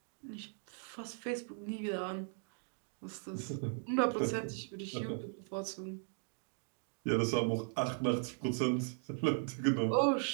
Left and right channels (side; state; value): left; silent; 53 dB below the other